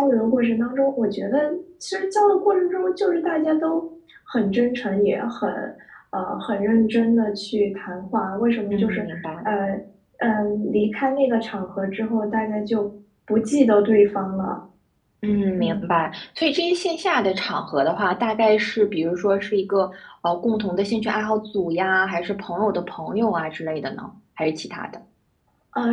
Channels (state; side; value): identical; both; correlation 1.00